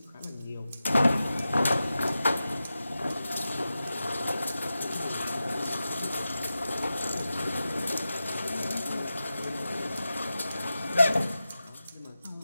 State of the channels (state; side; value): inverted; both; correlation -0.92